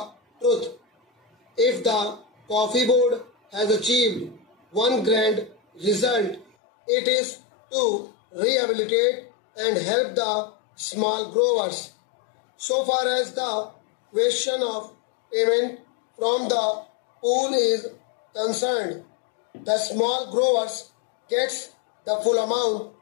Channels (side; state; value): right; drops out; at 6.5 s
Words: truth. If the coffee board has achieved one grand result, it is to rehabilitate and help the small growers. So far as the question of payment from the pool is concerned, the small growers gets the full amount